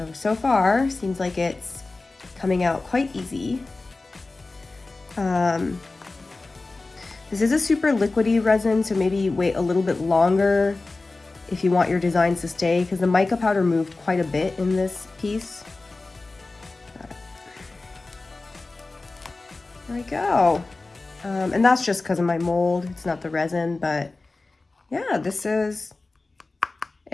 So far, seems like it's coming out quite easy. This is a super liquidy resin, so maybe wait a little bit longer if you want your designs to stay, because the mica powder moved quite a bit in this piece. There we go. And that's just because of my mold. It's not the resin, but yeah,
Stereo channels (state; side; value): quieter; right; 3.4 dB